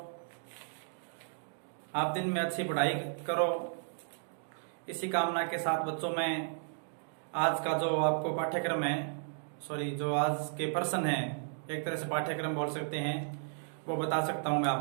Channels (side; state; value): left; silent; digital silence